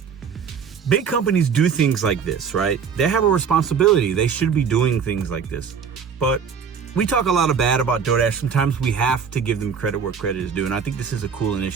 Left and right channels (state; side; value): quieter; left; 6.6 dB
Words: Big companies do things like this, right? They have a responsibility. They should be doing things like this. But we talk a lot of bad about DoorDash. Sometimes we have to give them credit where credit is due, and I think this is a cool